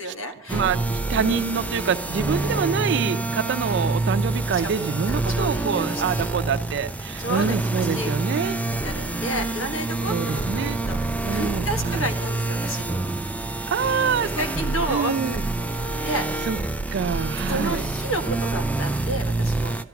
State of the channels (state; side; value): quieter; left; 3.5 dB